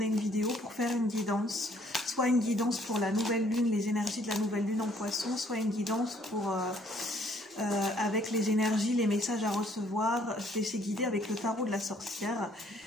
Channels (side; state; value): both; normal; correlation 0.63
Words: une vidéo pour faire une guidance. Soit une guidance pour la nouvelle lune, les énergies de la nouvelle lune en poisson, soit une guidance pour avec les énergies, les messages à recevoir. Je laissé guider avec le tarot de la sorcière.